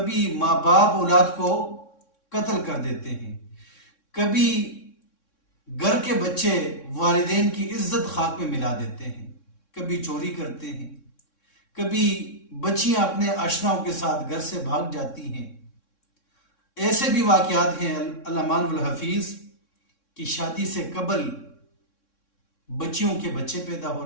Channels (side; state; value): right; late; 3.6 ms